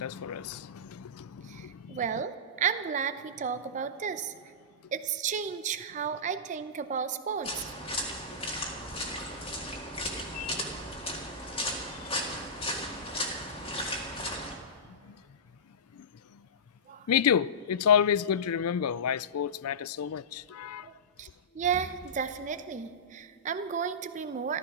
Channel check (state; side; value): normal; both; correlation -0.19